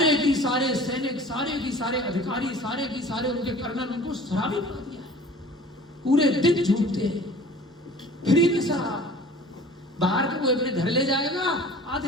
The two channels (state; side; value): normal; both; correlation 0.45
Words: की सारे सैनिक, सारे की सारे अधिकारी, सारे की सारे उनके कर्नल उनको शराबी बना दिया है। पूरे दिन झूठते हैं, फ्री में शराब। बाहर का कोई अपने घर ले जाएगा,